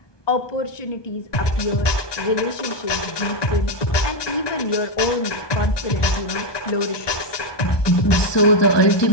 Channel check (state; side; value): late; right; 1.2 ms